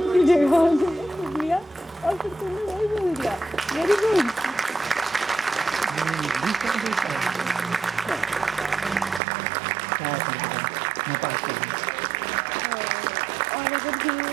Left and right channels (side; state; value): left; drops out; at 9.2 s